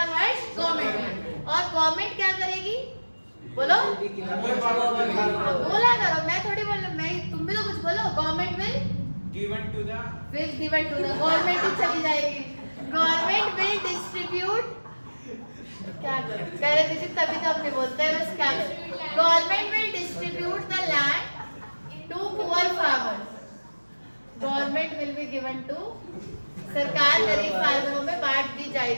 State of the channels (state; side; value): inverted; both; correlation -1.00